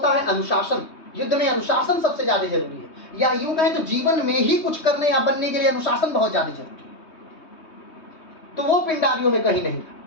है अनुशासन। युद्ध में अनुशासन सबसे ज्यादा जरूरी है, या यूं कहें तो जीवन में ही कुछ करने या बनने के लिए अनुशासन बहुत ज्यादा जरूरी है। तो वो पिंडारियों में कहीं नहीं था।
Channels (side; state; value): right; late; 3.2 ms